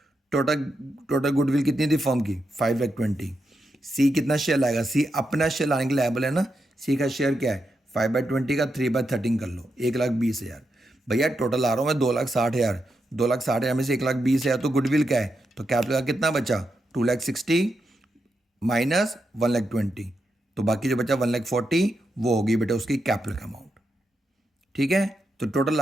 टोटल गुडविल कितनी थी फर्म की 5,20,000। सी कितना शेयर लाएगा, सी अपना शेयर लाने के लिए लायबल है ना। सी का शेयर क्या है 5/20 का 3/13 कर लो, 1,20,000। भैया टोटल आ रहा हूँ मैं 2,60,000, 2,60,000 में से 1,20,000 तो गुडविल का है, तो कैपिटल का कितना बचा 2,60,000 माइनस 1,20,000, तो बाकी जो बचा 1,40,000 वो होगी बेटा उसकी कैपिटल का अमाउंट। ठीक है, तो टोटल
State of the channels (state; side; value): normal; both; correlation 0.85